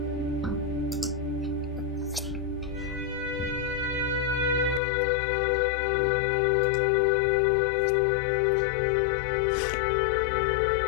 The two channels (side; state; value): right; drops out; at 4.8 s